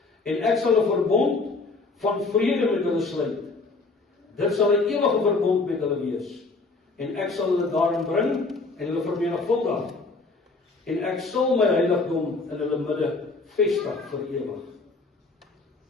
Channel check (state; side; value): quieter; right; 3.7 dB